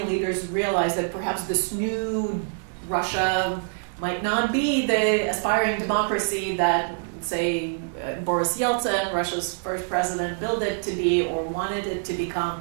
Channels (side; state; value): left; silent; 62 dB below the other